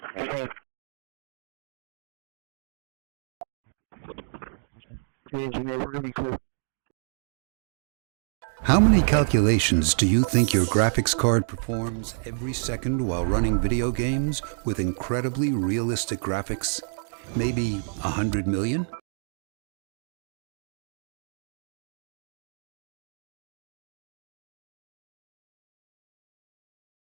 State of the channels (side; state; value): left; silent; digital silence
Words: Engineer, we're gonna be clear. How many calculations do you think your graphics card performs every second while running video games with incredibly realistic graphics? Maybe 100 million?